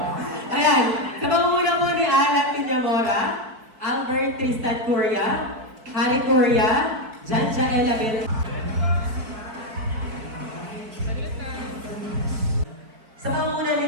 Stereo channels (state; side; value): late; left; 4.5 ms